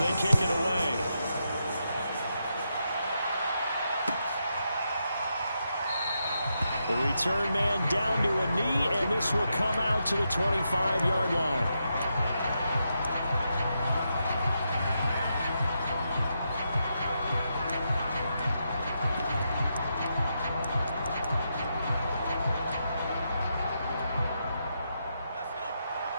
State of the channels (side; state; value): both; inverted; correlation -0.83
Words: kick it away. The return man down to a knee, and this will come out to the 25-yard line.